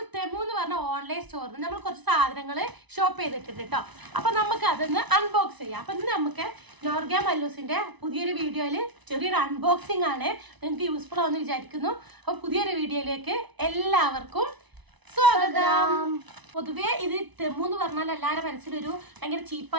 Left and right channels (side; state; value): left; late; 1.0 ms